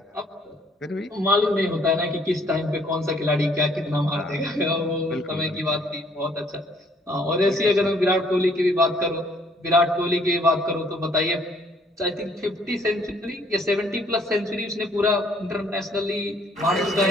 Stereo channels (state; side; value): normal; both; correlation 0.63